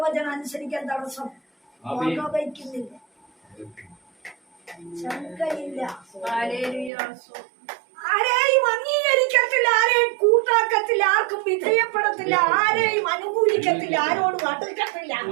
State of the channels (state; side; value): drops out; left; at 6.9 s